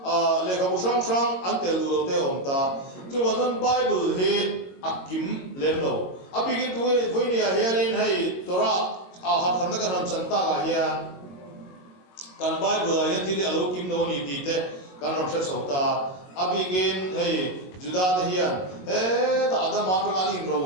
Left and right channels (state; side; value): late; right; 22 ms